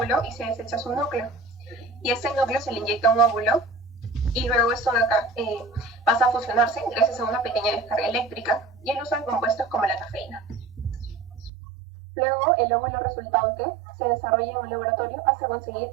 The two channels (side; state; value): left; drops out; at 11.5 s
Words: y se desecha su núcleo. Y este núcleo se le inyecta un óvulo y luego esto de acá pasa a fusionarse gracias a una pequeña descarga eléctrica y el uso de compuestos como la cafeína. Luego el óvulo resultante se desarrolla en un laboratorio hasta conseguir